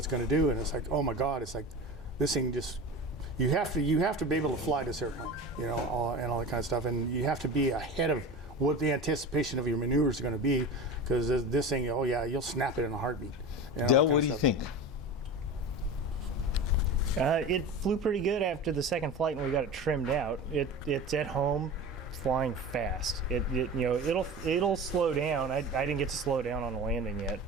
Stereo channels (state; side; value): normal; both; correlation 0.31